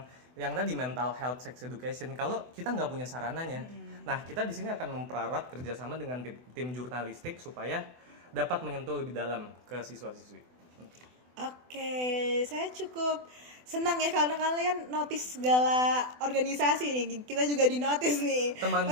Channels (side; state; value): left; late; 24 ms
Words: yang tadi mental health, sex education. Kalau kita nggak punya sarananya, nah kita di sini akan mempererat kerjasama dengan tim jurnalistik supaya dapat menyentuh lebih dalam ke siswa-siswi. Oke, saya cukup senang ya karena kalian notice segala organisasi nih. Kita juga di notice nih. Teman